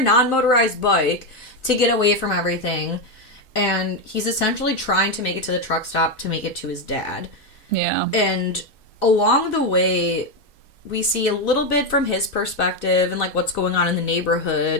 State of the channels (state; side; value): normal; both; correlation 0.07